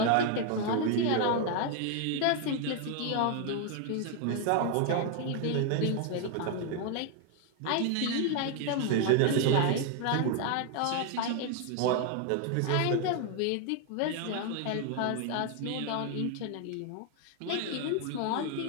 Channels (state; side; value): different; both; correlation 0.00